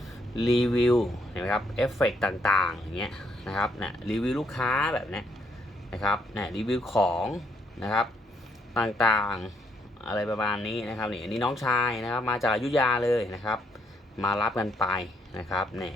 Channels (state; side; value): normal; both; correlation 0.73